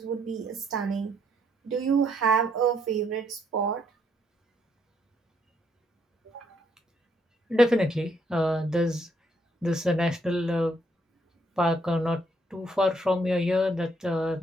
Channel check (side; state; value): both; normal; correlation 0.72